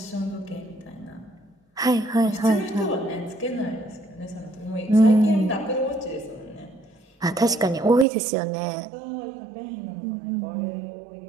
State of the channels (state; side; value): drops out; left; at 8.1 s